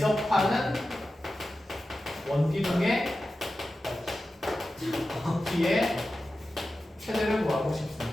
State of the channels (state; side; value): normal; both; correlation 0.93